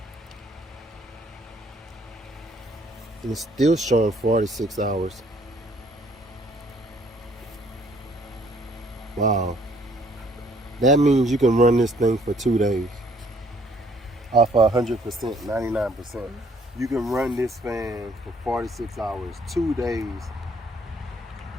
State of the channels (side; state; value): both; normal; correlation 0.63